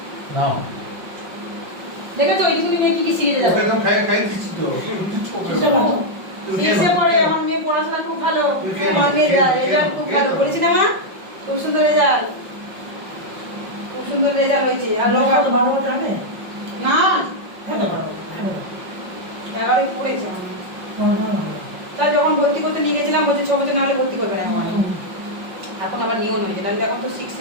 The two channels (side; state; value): left; late; 5.5 ms